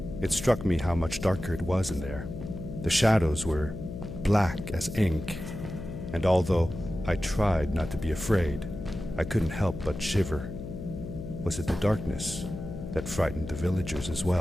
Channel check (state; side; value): noise; left; hum, 9 dB below the sound